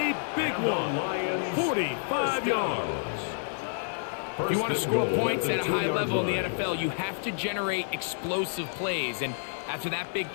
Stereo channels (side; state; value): right; silent; 59 dB below the other